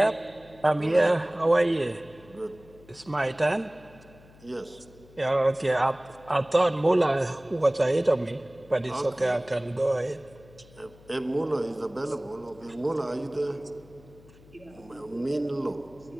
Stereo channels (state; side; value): noise; left; hum, 24 dB below the sound